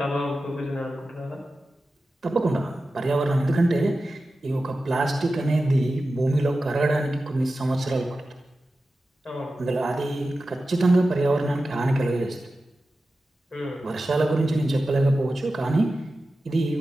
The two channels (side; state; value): both; normal; correlation 0.93